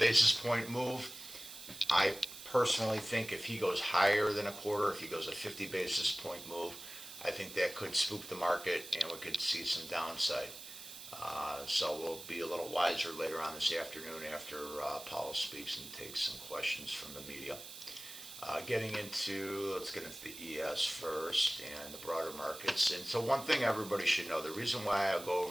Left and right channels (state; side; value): noise; right; hiss, 13 dB below the sound